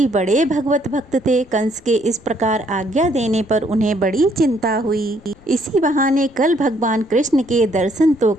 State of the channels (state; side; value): noise; left; rumble, 27 dB below the sound